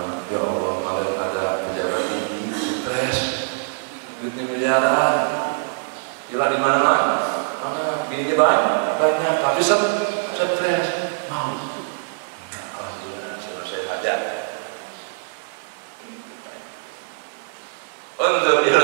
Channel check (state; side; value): silent; left; 63 dB below the other